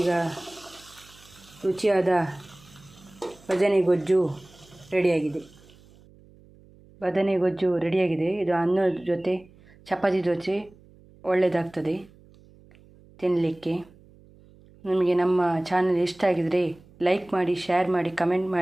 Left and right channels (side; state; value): right; noise; hum, 26 dB below the sound